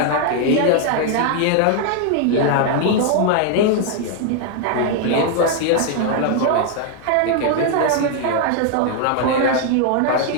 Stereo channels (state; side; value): different; both; correlation 0.00